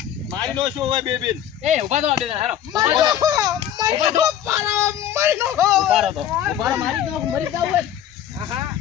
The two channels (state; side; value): quieter; right; 10.4 dB